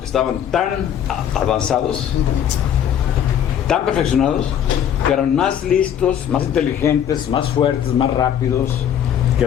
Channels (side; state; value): right; quieter; 9.4 dB